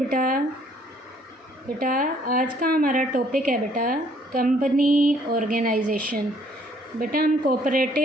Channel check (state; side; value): normal; both; correlation 0.63